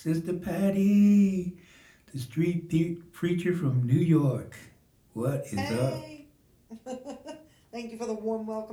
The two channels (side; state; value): both; identical; correlation 1.00